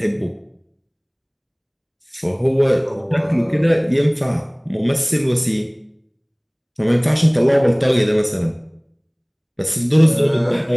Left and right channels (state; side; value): identical; both; correlation 1.00